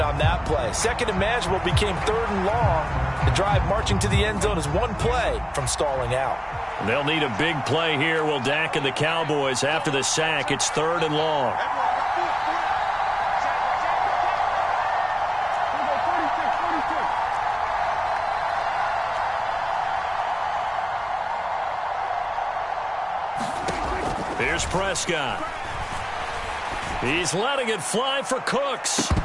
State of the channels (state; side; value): identical; both; correlation 1.00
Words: on that play. 2nd and manageable became 3rd and long. The drive marching to the end zone is one play from stalling out. They'll need a big play here, will Dak and the Cowboys. After the sack, it's 3rd and long. Here's Prescott. He's letting it fly for Cooks.